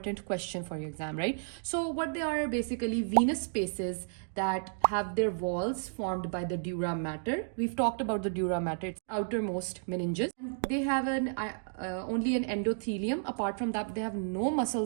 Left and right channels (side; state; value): left; silent; digital silence